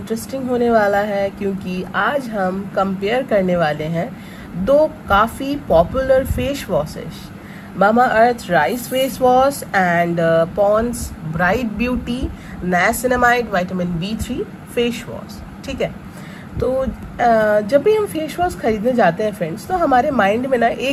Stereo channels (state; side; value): identical; both; correlation 1.00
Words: होने वाला है क्योंकि आज हम कंपेयर करने वाले हैं दो काफ़ी popular face washes, Mamaearth rice face wash and Pond's bright beauty niacinamide vitamin B3 face wash. ठीक है, तो जब भी हम फेस वॉश खरीदने जाते हैं फ्रेंड्स, तो हमारे माइंड में ना